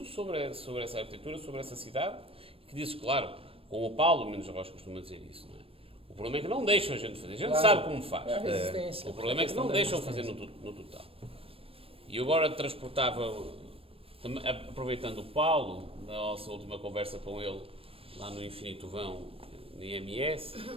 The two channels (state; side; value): late; left; 0.27 ms